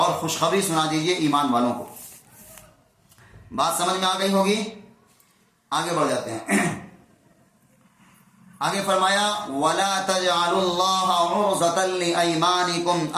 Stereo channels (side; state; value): both; identical; correlation 1.00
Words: خوشخبری سنا دیجئے ایمان والوں کو. بات سمجھ میں آ گئی ہوگی؟ آگے بڑھ جاتے ہیں. آگے فرمایا وَلَا تَجْعَلُوا اللَّهَ عُرْضَةً لِأَيْمَانِكُمْ